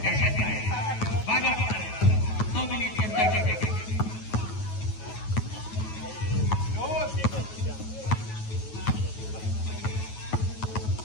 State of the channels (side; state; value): right; late; 9.3 ms